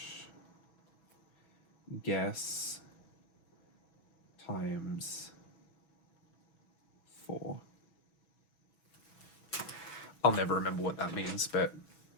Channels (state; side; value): late; right; 6.1 ms